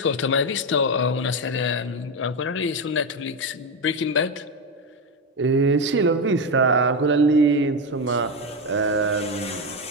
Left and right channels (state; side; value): normal; both; correlation 0.11